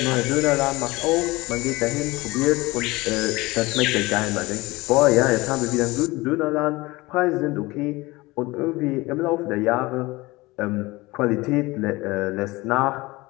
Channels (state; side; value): quieter; right; 21.6 dB